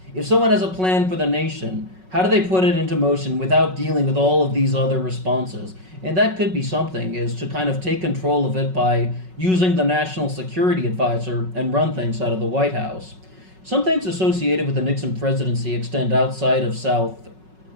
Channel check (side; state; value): left; late; 5.4 ms